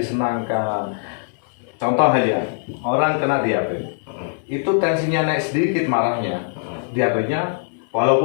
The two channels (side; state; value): right; silent; 64 dB below the other